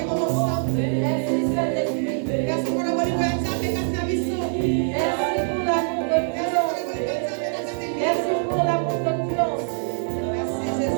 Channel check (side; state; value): left; silent; 63 dB below the other